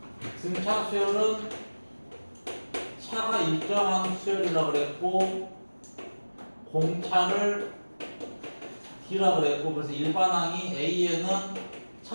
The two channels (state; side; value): inverted; both; correlation -1.00